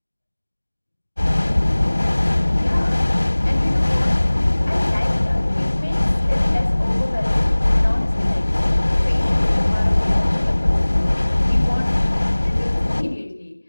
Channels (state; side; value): inverted; both; correlation -1.00